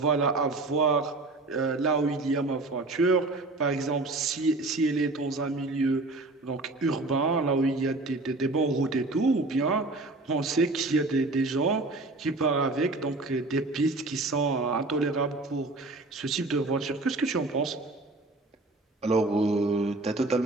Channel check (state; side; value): quieter; left; 3.1 dB